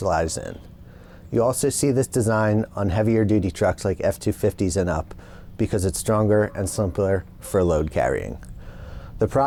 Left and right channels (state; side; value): identical; both; correlation 1.00